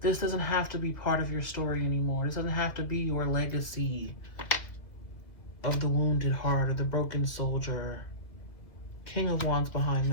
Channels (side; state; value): right; late; 2.3 ms